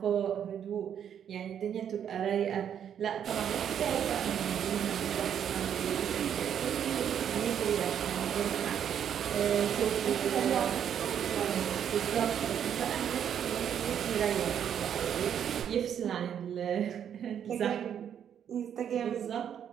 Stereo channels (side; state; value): left; quieter; 8.9 dB